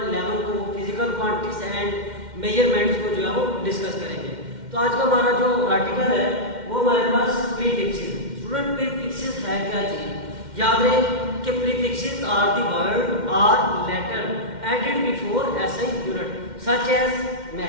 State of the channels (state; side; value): late; left; 2.1 ms